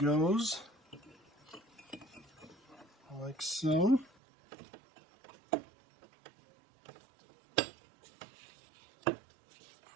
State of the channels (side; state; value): left; drops out; at 4.1 s